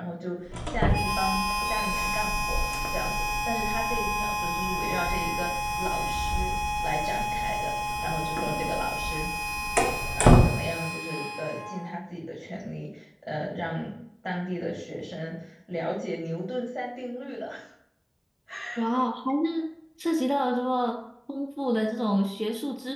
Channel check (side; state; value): both; identical; correlation 1.00